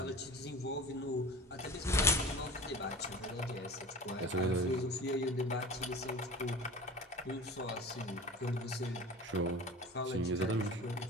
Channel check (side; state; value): both; normal; correlation 0.37